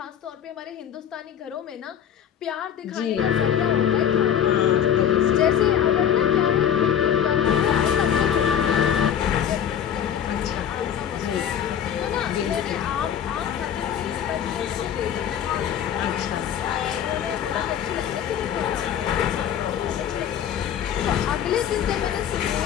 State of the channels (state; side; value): quieter; right; 9.2 dB